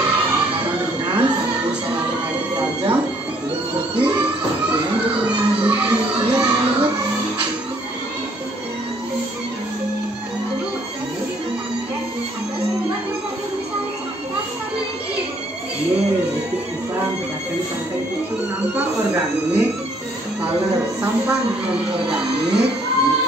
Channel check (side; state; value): both; normal; correlation 0.64